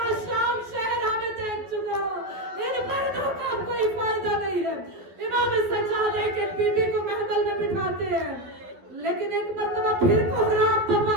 شام شہر ہمیں دیکھ چکا ان پردوں کا کوئی فائدہ نہیں ہے۔ امام سجاد ایک ایک بیوی کو محمل میں بٹھاتے ہیں، لیکن ایک مرتبہ پھر کوہرام پپا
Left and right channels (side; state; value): left; late; 12 ms